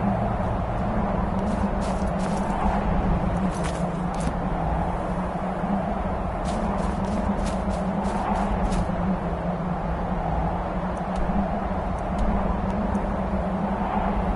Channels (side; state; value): both; identical; correlation 1.00